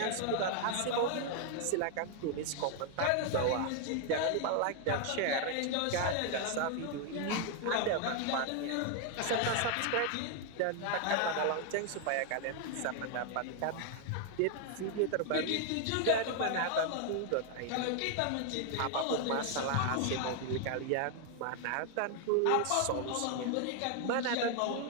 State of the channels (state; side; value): different; both; correlation 0.00